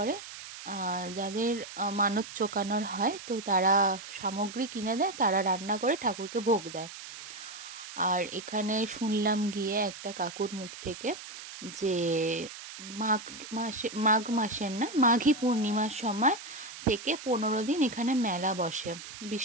যাদের মানত চোকানোর হয় তো তারা সামগ্রী কিনে দেয়, তারা রান্না করে ঠাকুরকে ভোগ দেয়। আর এখানে শুনলাম গিয়ে একটা কাকুর মুখ থেকে যে মাঘ মাসের না, মাঘী পূর্ণিমার সময় থেকে 15 দিন এখানে মেলা বসে,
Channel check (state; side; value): noise; right; hiss, 12 dB below the sound